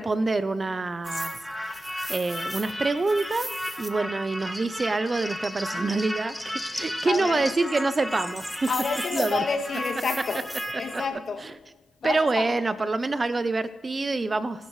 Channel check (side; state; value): both; normal; correlation 0.92